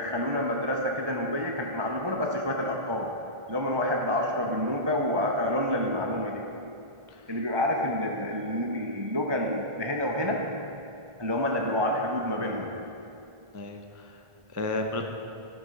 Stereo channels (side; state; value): left; late; 1.5 ms